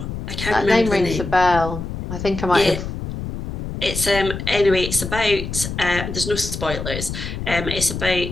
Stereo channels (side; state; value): left; noise; rumble, 6 dB below the sound